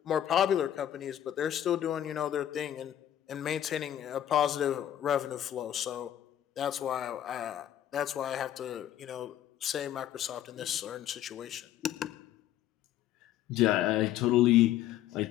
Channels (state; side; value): quieter; right; 11.6 dB